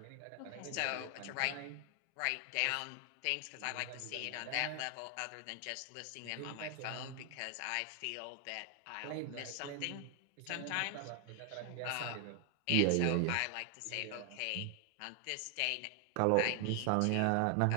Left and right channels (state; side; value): different; both; correlation 0.00